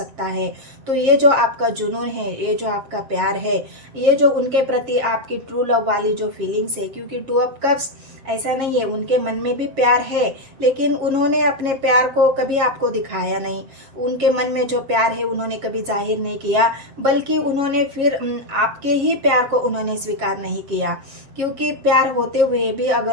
है। तो ये जो आपका जुनून है, ये जो आपका प्यार है, ये जो उनके प्रति आपकी ट्रू लव वाली जो फीलिंग्स है, क्योंकि टू ऑफ कप्स ऐसा नहीं है, उनके मन में भी प्यार है, लेकिन उन्होंने अपने प्यार को कभी आपको दिखाया नहीं। उनके मन में जो प्यार है उन्होंने कभी जाहिर नहीं किया, बल्कि उन्होंने फिर आपके ही प्यार को उन्होंने स्वीकार नहीं किया। क्योंकि प्यार होते हुए भी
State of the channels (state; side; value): late; left; 7.4 ms